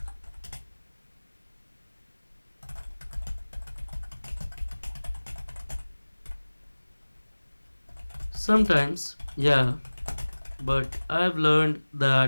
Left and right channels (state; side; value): inverted; both; correlation -1.00